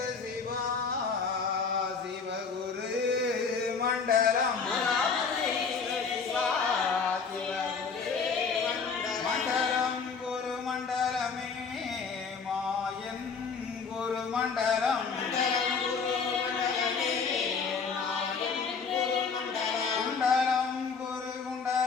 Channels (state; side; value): quieter; right; 5.3 dB